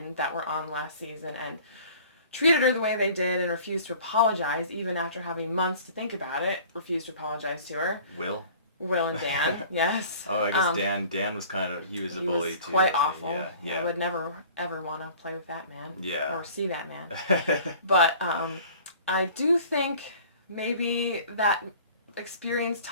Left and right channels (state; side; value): inverted; both; correlation -0.48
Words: that were on last season and treated her the way they did and refused to apologize even after having months to think about it. Refused to apologize to her. Will and Dan, yes. Oh, I guess Dan was he was a bully too. Quite awful. Yeah. I would never ever want to play with that man. Yeah. Or see that man. But I do think maybe that experience